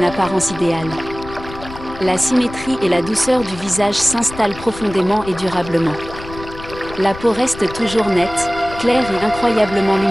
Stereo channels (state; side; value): noise; left; rumble, 14 dB below the sound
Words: apparence idéale. La symétrie et la douceur du visage s'installent profondément et durablement. La peau reste toujours nette, claire et incroyablement